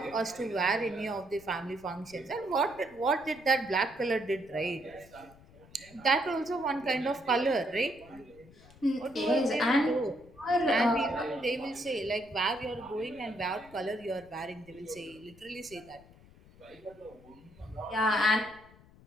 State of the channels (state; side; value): noise; left; rumble, 24 dB below the sound